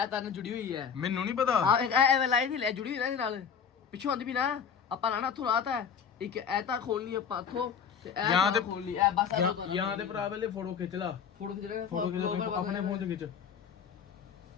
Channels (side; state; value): right; quieter; 7.2 dB